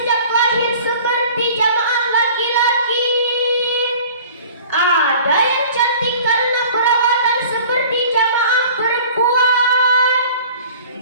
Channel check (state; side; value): inverted; both; correlation -0.46